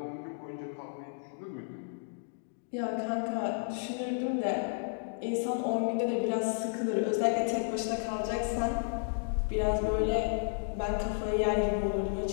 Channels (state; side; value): silent; right; digital silence